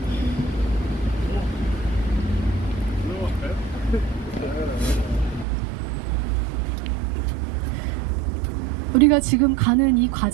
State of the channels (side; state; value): left; drops out; at 5.5 s